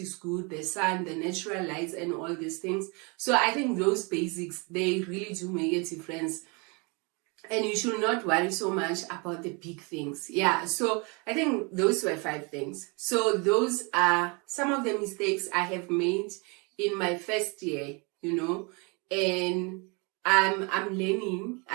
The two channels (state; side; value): quieter; left; 31.2 dB